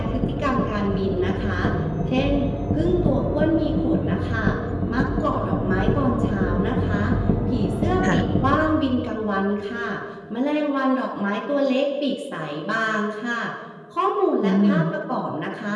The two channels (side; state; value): both; identical; correlation 1.00